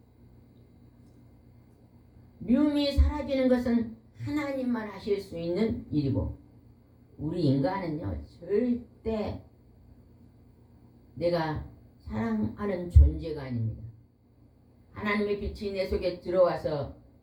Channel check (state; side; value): identical; both; correlation 1.00